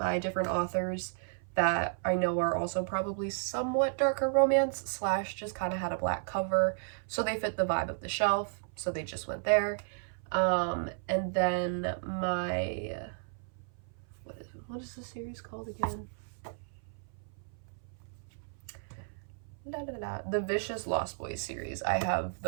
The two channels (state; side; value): silent; left; 56 dB below the other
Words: different authors that I know are also probably somewhat darker romance slash just kind of had a black cover, so they fit the vibe of the shelf, so they just went there. And then my, what is the series called again? The Vicious Lost Boys series. I have